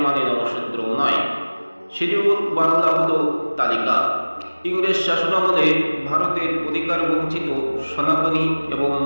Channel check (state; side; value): inverted; both; correlation -1.00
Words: মানে নমশূদ্র নয়। শিডিউল বাংলা হলো তালিকা। ইংরেজ শাসনামলে ভারতের অধিকার বঞ্চিত সনাতনী এবং